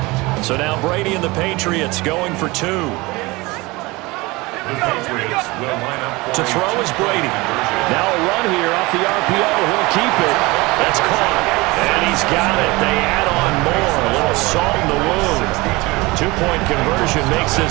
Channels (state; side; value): quieter; left; 22.8 dB